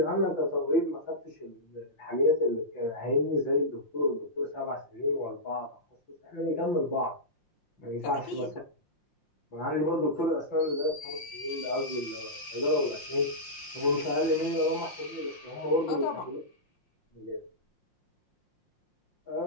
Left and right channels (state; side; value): late; right; 5.6 ms